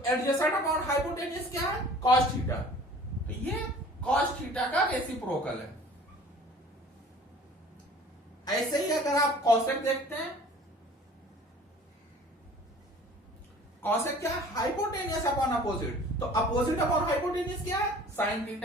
एडजेसेंट अपॉन हाइपोटेन्यूज क्या है? Cos theta. तो ये कॉस थीटा का रेसिप्रोकल है। ऐसे ही अगर आप कॉसेक देखते हैं, कॉसेक क्या है? Hypotenuse upon opposite. तो अपोजिट अपॉन हाइपोटेनियस क्या है? Sine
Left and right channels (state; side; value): normal; both; correlation 0.48